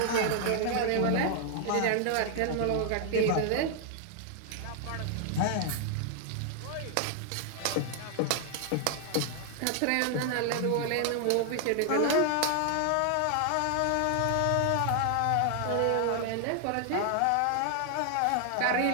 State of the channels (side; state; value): both; different; correlation 0.00